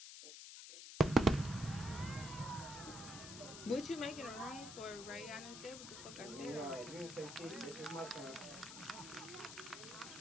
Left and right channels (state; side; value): noise; left; hiss, 10 dB below the sound